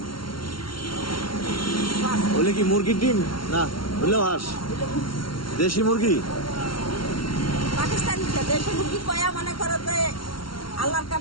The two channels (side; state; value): right; late; 0.73 ms